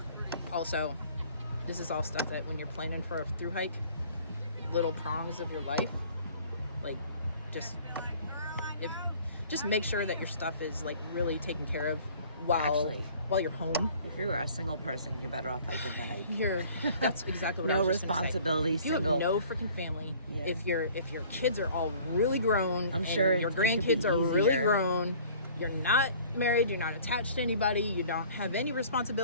also, this is all stuff that when you're planning for a thru hike, little prongs of your life, like, just make sure that your stuff is, like, really taken care of while you're home. If you were a single person, you're better off hiking the hike. That's exactly what I No was just gonna say. responsibility, If you single. have no freaking family, Yeah. if your kids are all really grown, I'm and sure your it could be grandkids are really easier. grown, you're not married, you're not attached to anybody, you don't have any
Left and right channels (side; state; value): both; inverted; correlation -0.51